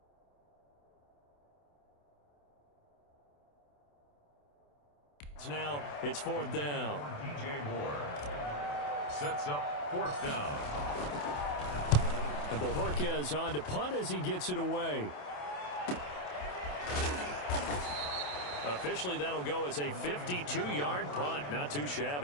Now it's 4th down. DJ Moore sets up 4th down. And Bojorquez on to punt as he gets it away. Officially, that'll go as a 52-yard punt. Not too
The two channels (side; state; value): right; late; 27 ms